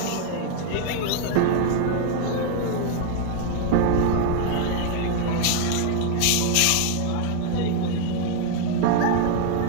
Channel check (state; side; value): different; both; correlation 0.00